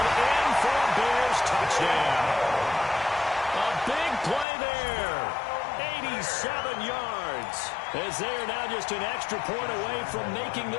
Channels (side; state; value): right; drops out; at 4.5 s